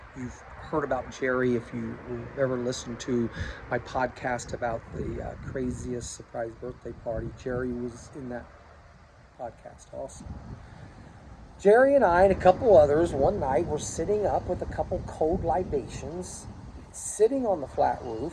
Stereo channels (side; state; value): both; identical; correlation 1.00